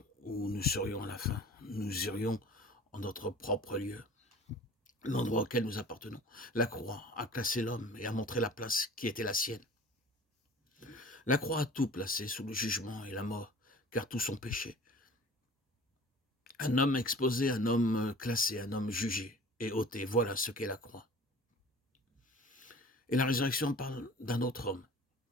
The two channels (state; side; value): normal; both; correlation 0.44